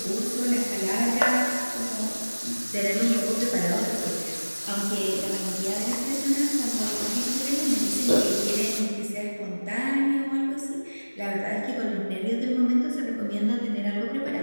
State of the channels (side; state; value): both; inverted; correlation -1.00